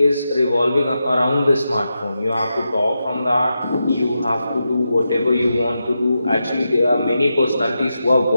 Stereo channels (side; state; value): both; inverted; correlation -0.88